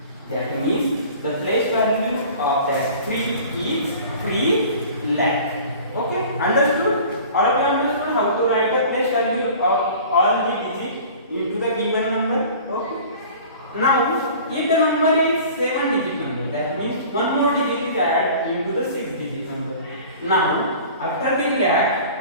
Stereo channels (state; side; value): inverted; both; correlation -0.44